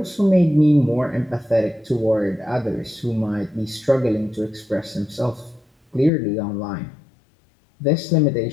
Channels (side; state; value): right; drops out; at 6.1 s